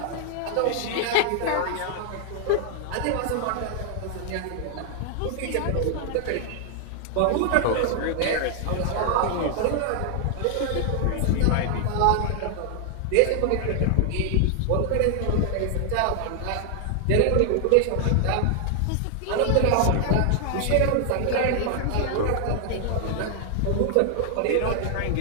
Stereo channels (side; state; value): both; different; correlation 0.00